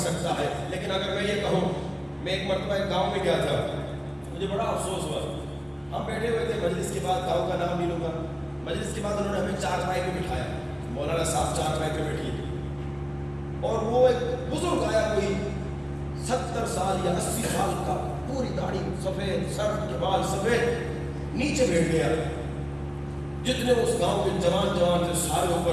ہے۔ لیکن اگر میں یہ کہوں، میں ایک مرتبہ ایک گاؤں میں گیا تھا، مجھے بڑا افسوس ہوا، ہم بیٹھے ہوئے تھے مجلس کے بعد، گاؤں کا نام نہیں لوں گا، مجلس کے بعد انہوں نے ہمیں چارپائی پہ بٹھایا، مولانا صاحب چارپائی پہ بیٹھیے، اور وہ ایک بزرگ آیا، کوئی 70 سال یا 80 سال کا، پوری داڑھی سفید، سر کے بال سفید، نیچے بیٹھ گیا۔ جتنے اس گاؤں کے جوان تھے سارے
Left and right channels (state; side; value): identical; both; correlation 1.00